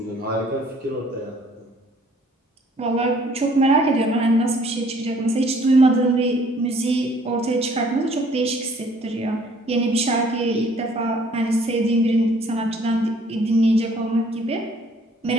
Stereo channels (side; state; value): both; normal; correlation 0.59